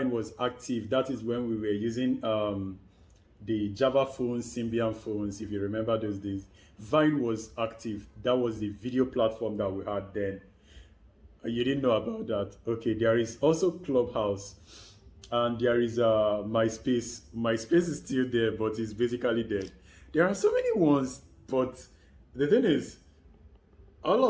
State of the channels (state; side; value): identical; both; correlation 1.00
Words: was active, that is when we were using the Java phones, Symbian phones, if you remember those days. Vine was active. That was the video platform that we had then. You didn't know about that. Okay, there is also Clubhouse, and there is MySpace. MySpace is still there, but it's basically dead. There are so many ones, but the thing is, all